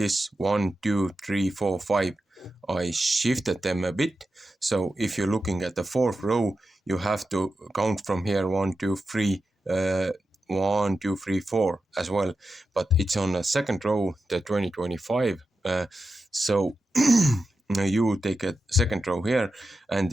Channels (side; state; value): both; normal; correlation 0.90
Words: 1, 2, 3, 4, 5. I shifted them a bit. So if you're looking at the 4th row, you have to count from here 1, 2, 3, 1, 2, 3, 4 as well. But it's on the 2nd row, the 2025. So you take a 2nd row here, and